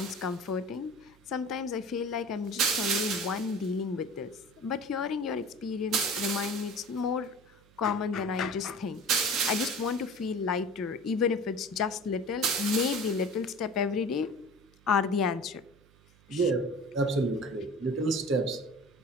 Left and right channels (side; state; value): right; noise; hum, 28 dB below the sound